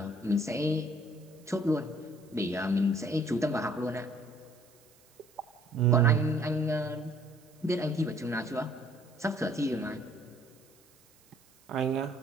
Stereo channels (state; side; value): noise; right; hiss, 29 dB below the sound